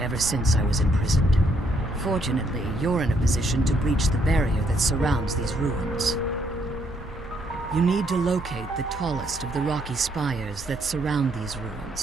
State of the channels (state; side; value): normal; both; correlation 0.71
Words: since I was imprisoned. Fortunately, you're in a position to breach the barrier that surrounds these ruins. You need to locate the tallest of the rocky spires that surround these